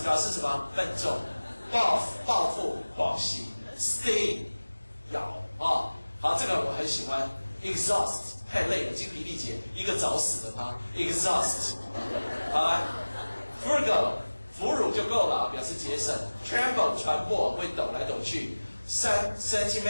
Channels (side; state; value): both; inverted; correlation -1.00